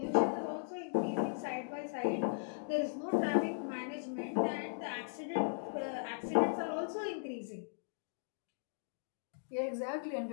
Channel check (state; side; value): silent; right; digital silence